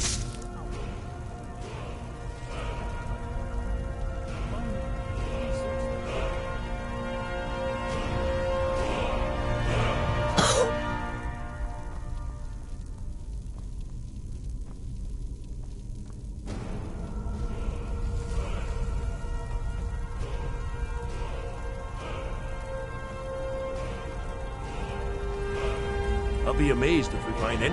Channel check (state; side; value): identical; both; correlation 1.00